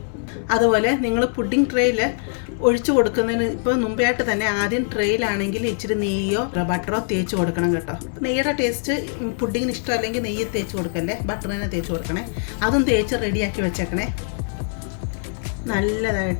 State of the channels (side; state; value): right; silent; 64 dB below the other